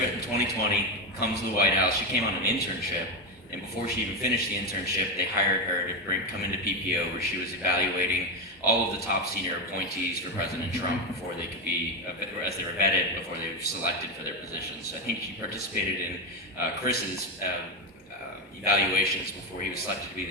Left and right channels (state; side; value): normal; both; correlation 0.12